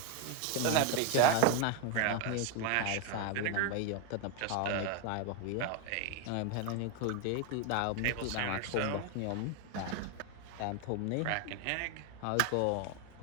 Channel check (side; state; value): both; different; correlation 0.01